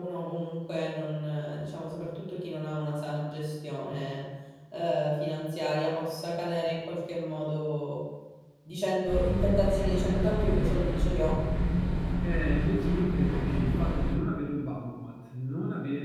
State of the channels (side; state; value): both; identical; correlation 1.00